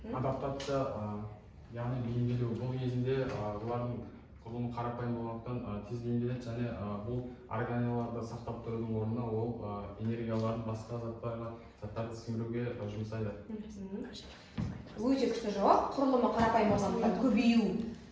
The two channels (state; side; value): identical; both; correlation 1.00